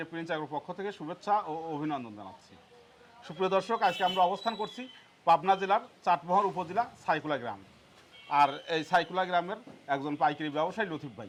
প্রিন্স অ্যাগ্রোর পক্ষ থেকে শুভেচ্ছা ও অভিনন্দন জানাচ্ছি। সুপ্রিয় দর্শক, আজকে আমরা অবস্থান করছি পাবনা জেলার চাটমোহর উপজেলা সাইকুলা গ্রাম। আর এই সাইকুলা গ্রামের একজন পাইকারি ব্যবসায়ী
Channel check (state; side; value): identical; both; correlation 1.00